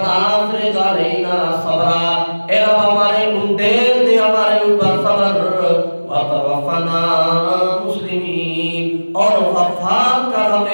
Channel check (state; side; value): inverted; both; correlation -1.00